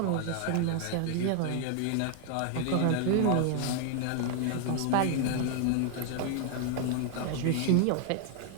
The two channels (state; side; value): different; both; correlation 0.00